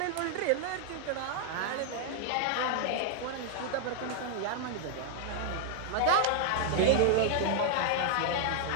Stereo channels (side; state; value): both; different; correlation 0.00